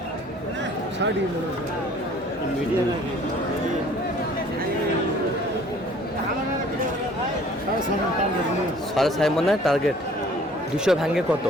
সাড়ে 6 মনে টার্গেট। 200 ভাঙে কত?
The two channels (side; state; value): both; normal; correlation 0.54